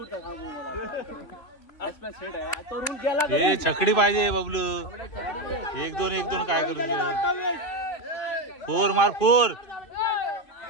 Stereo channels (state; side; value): late; right; 3.2 ms